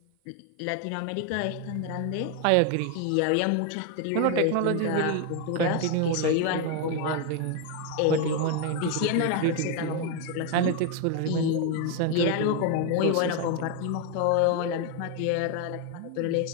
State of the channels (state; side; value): different; both; correlation 0.01